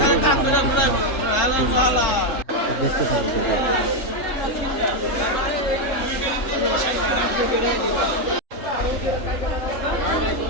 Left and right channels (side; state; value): right; late; 3.7 ms